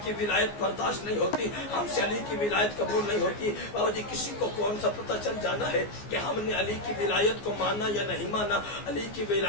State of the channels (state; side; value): late; right; 14 ms